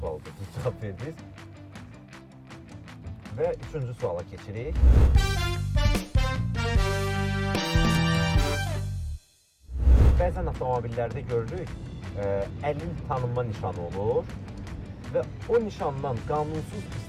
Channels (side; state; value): both; identical; correlation 1.00